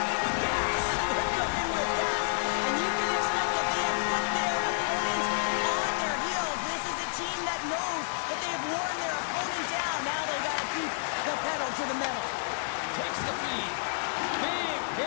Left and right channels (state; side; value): silent; right; digital silence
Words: with gas. They're cooking with gas, and you can expect that they have put their opponents on their heels. This is a team that knows that they have worn their opponent down. Now they got to keep the pedal to the metal. Takes the feed. Big